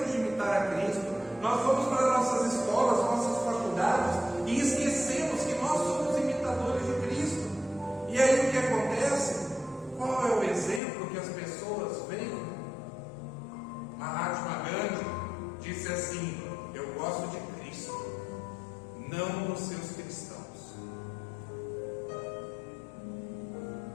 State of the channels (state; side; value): drops out; right; at 10.8 s